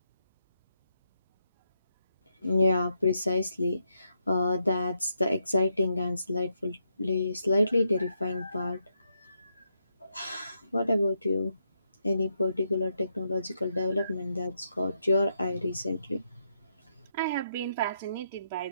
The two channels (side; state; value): both; inverted; correlation -0.80